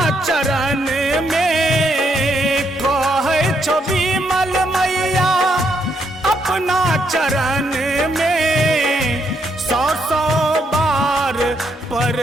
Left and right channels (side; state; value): both; normal; correlation 0.75